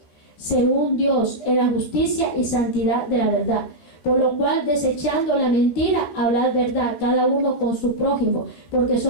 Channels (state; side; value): late; right; 13 ms